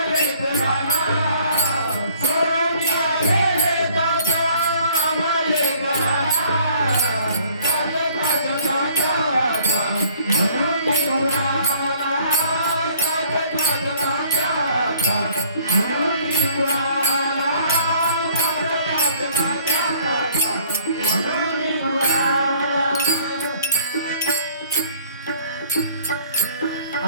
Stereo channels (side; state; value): both; inverted; correlation -0.57